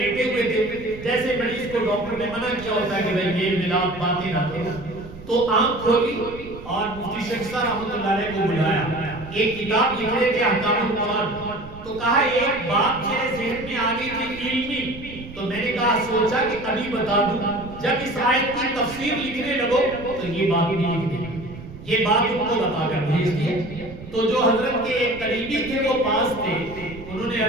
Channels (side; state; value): right; noise; rumble, 15 dB below the sound